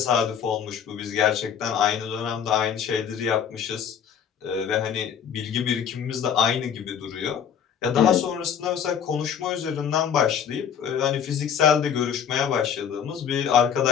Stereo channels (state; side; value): quieter; right; 8.1 dB